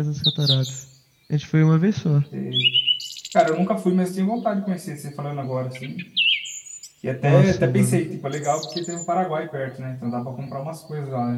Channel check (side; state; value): both; identical; correlation 1.00